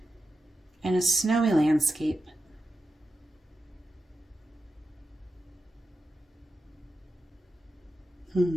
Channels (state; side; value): normal; both; correlation 0.90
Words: and a snowy landscape.